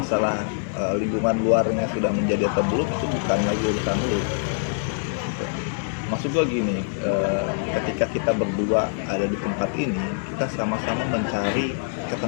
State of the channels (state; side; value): silent; right; 62 dB below the other